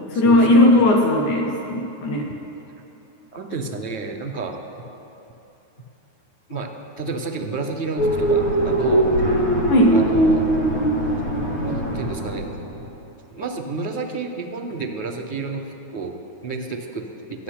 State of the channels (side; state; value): right; late; 9.4 ms